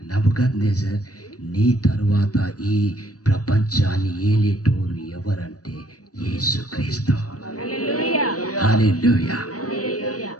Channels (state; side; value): late; right; 0.67 ms